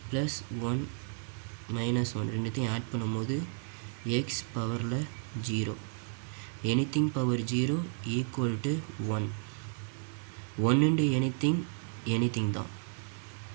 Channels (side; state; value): left; silent; 56 dB below the other